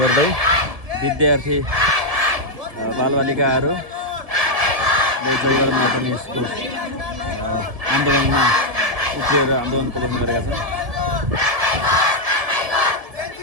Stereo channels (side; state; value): left; late; 1.5 ms